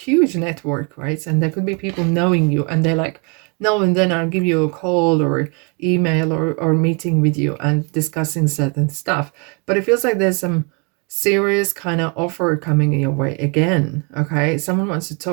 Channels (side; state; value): left; quieter; 32.9 dB